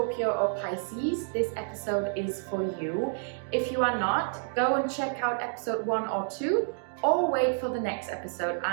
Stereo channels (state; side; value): silent; left; digital silence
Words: or Pisces, this episode is for you. If you are not, go and check out episode 1 or 2. Or wait for the next episode,